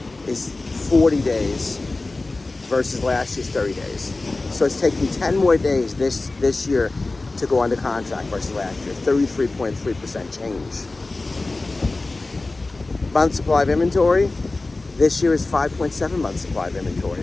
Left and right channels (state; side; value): quieter; right; 3.2 dB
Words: is 40 days versus last year's 30 days. So it's taking 10 more days this year to go under contract versus last year, 33.3% change. Month supply of inventory, this year is 5.7 months supply of